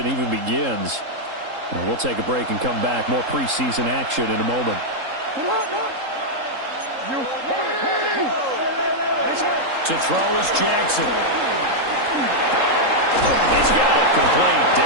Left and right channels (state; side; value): late; left; 3.8 ms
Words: even begins. Now, we'll take a break and come back. More preseason action in a moment. To throw is Jackson. He's got it complete.